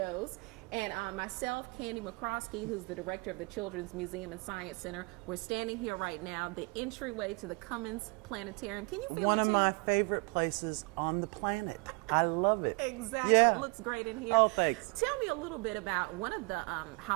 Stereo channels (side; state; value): left; quieter; 30.2 dB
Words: And myself, McCroskey, who's the director of the Children's Museum and Science Center, we're standing here right now, the entryway to the Cummins Planetarium. Can you feel it too? One of my favorite places on the planet. I love it. Exactly. Yeah. It looks great in here. Oh, thanks. Tell me a little bit about one of the